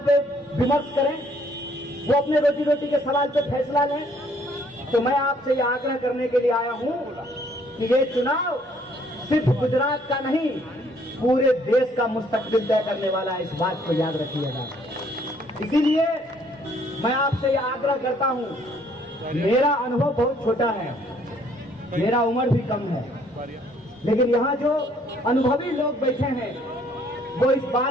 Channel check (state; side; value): normal; both; correlation 0.63